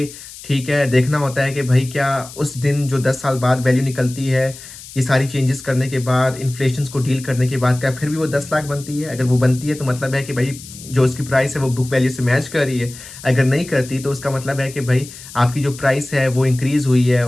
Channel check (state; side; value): noise; left; hiss, 16 dB below the sound